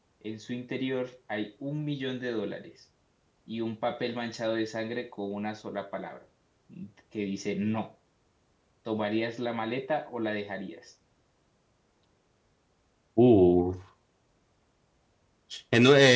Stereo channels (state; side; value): identical; both; correlation 1.00